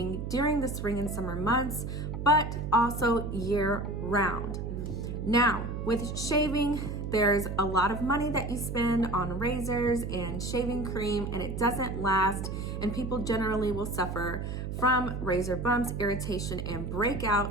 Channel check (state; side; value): noise; right; hum, 5 dB below the sound